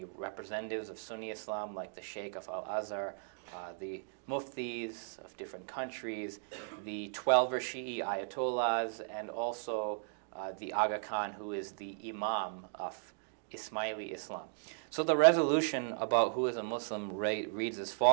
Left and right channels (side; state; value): left; silent; digital silence